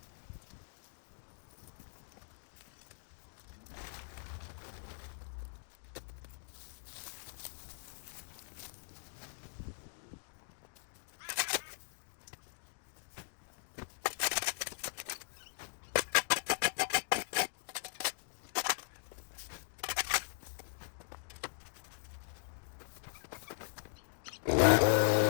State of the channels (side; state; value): right; silent; digital silence